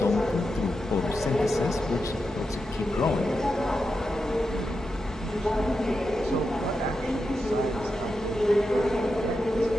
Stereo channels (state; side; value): normal; both; correlation 0.88